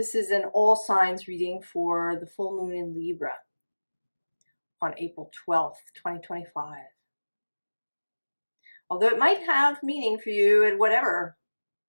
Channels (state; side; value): inverted; both; correlation -1.00